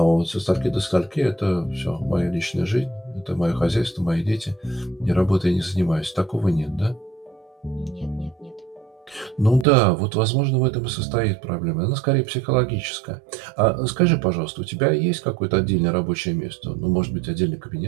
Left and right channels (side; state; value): left; drops out; at 9.7 s